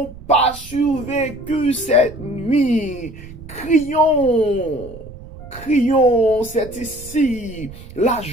pas survécu cette nuit. Crions, c'est ici la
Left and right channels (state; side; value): noise; right; rumble, 16 dB below the sound